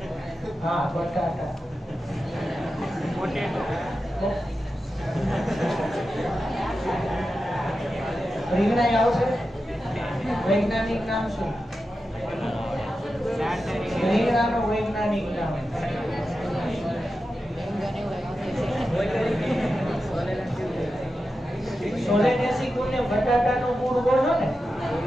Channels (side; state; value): both; normal; correlation 0.91